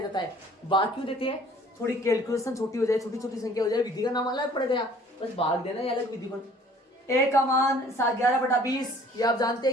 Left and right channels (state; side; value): normal; both; correlation 0.53